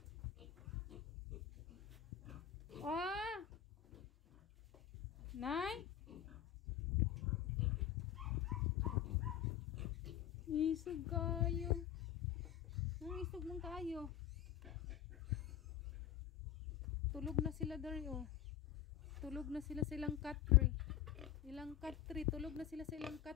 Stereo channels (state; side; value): quieter; right; 10.7 dB